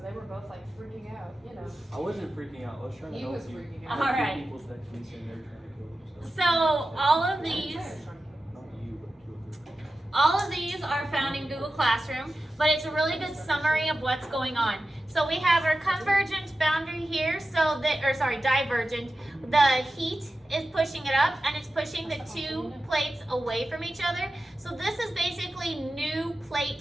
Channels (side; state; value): both; normal; correlation 0.93